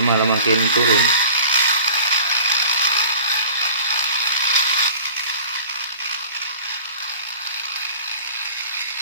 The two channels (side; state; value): both; inverted; correlation -0.46